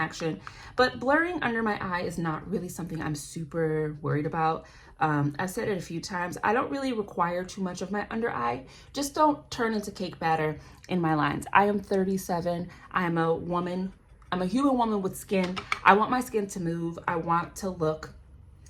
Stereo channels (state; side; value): identical; both; correlation 1.00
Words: but blurring under my eye is not really something I'm super worried about. I've said it a few times. I don't really require too much of my under eye. Just don't turn into cake batter in my lines. I am 37. I am a woman. I'm a human woman with skin. I want my skin to move. I want to look